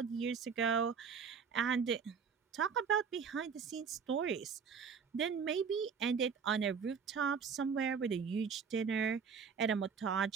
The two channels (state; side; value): quieter; left; 6.3 dB